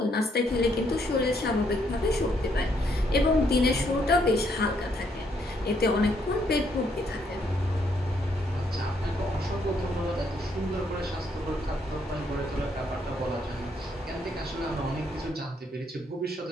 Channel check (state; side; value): normal; both; correlation 0.72